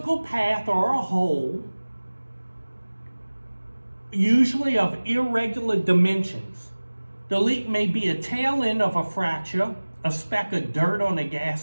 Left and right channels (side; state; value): both; inverted; correlation -1.00